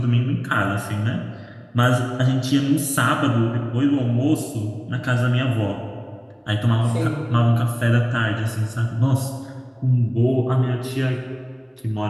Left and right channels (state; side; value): identical; both; correlation 1.00